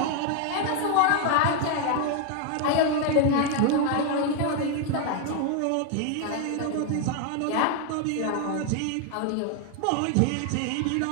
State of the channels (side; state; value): both; different; correlation 0.00